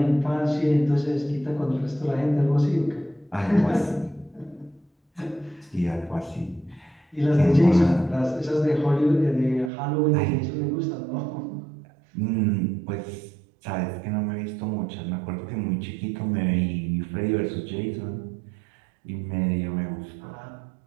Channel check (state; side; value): drops out; left; at 9.7 s